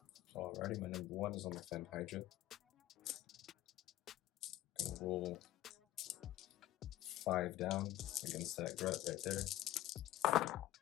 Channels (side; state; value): right; quieter; 14.6 dB